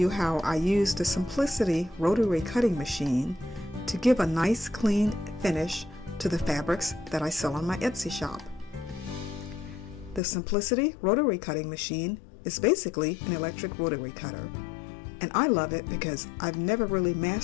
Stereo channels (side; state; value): right; drops out; at 10.2 s